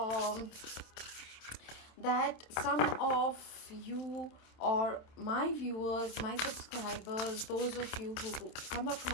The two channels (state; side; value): late; right; 27 ms